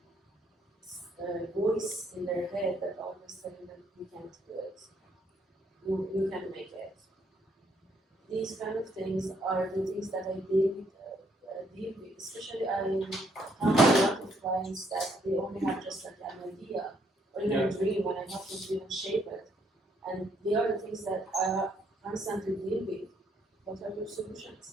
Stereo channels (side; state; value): both; normal; correlation 0.71